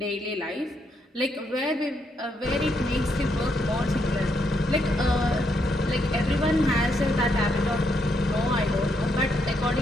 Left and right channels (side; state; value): both; normal; correlation 0.77